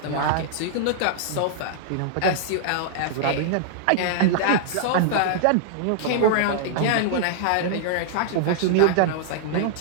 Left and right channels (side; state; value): both; different; correlation -0.01